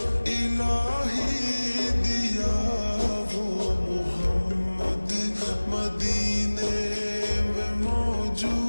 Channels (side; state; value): both; inverted; correlation -1.00